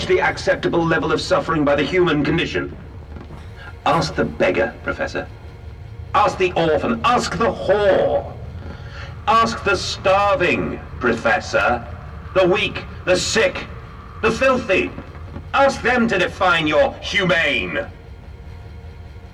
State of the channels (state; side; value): identical; both; correlation 1.00